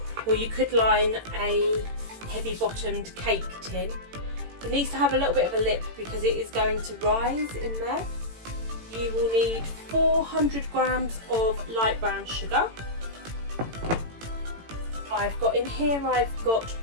or you could line a heavy bottomed cake tin. It needs to have a little bit of a lip because it is going to rise in there. You will need 400 grams of light brown sugar. I've got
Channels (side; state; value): left; late; 18 ms